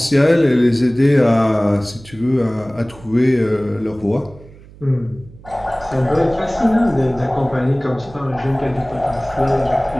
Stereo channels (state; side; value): noise; right; hum, 22 dB below the sound